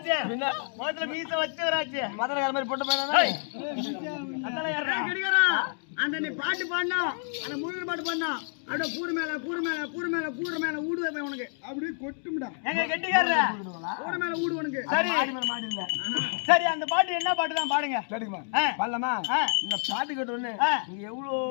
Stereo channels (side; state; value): right; silent; digital silence